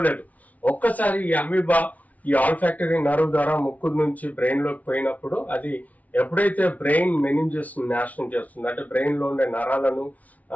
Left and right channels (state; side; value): late; right; 0.071 ms